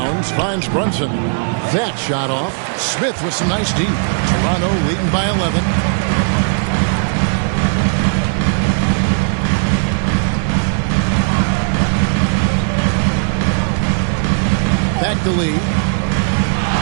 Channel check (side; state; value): left; silent; digital silence